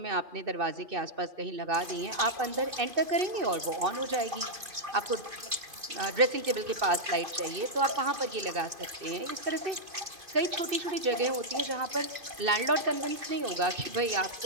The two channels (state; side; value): late; left; 2.5 ms